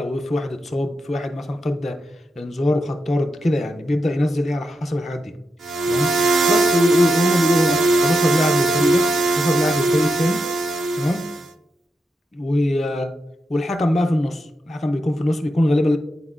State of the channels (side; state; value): both; normal; correlation 0.86